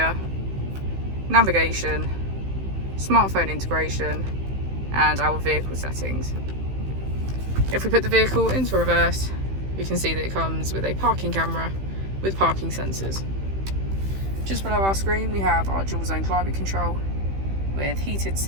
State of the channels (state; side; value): late; left; 15 ms